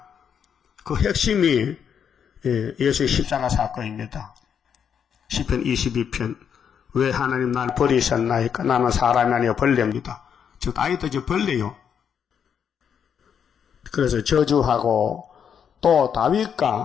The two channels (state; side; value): quieter; right; 7.8 dB